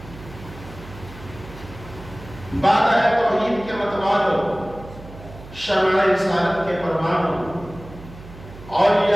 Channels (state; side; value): noise; right; hum, 17 dB below the sound